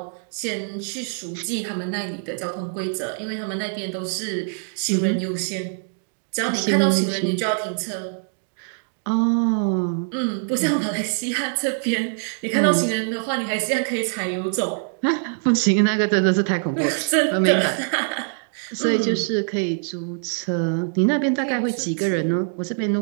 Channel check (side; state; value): left; silent; digital silence